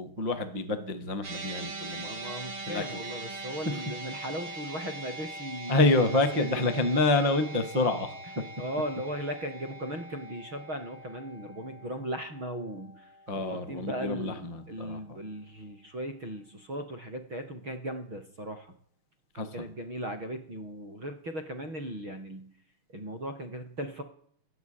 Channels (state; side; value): late; left; 6.4 ms